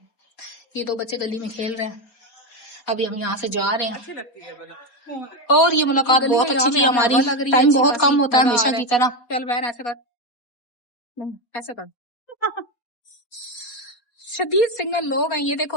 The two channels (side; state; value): right; late; 4.2 ms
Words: ये दो बच्चे गली में खेल रहे हैं, अभी हम यहाँ से जा रहे हैं। और ये मुलाकात बहुत अच्छी थी हमारी, टाइम बहुत कम होता है हमेशा की तरह। चल बहन ऐसे कर, ऐसे कर। शदीद सिंगल लोग हैं ये,